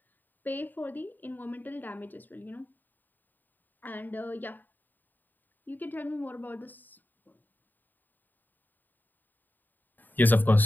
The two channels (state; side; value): late; right; 0.089 ms